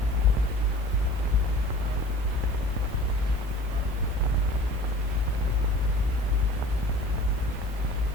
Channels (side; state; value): both; normal; correlation 0.44